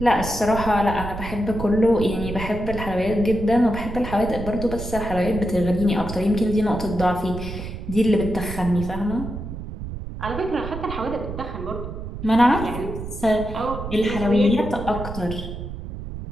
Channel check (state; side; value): noise; right; rumble, 8 dB below the sound